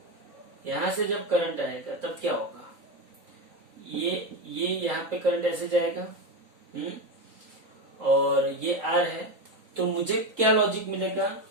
आएगा, तब क्या होगा? ये यहाँ पे करंट ऐसे जाएगा, और ये R है। तो मुझे क्या लॉजिक मिलेगा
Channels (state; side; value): late; left; 3.9 ms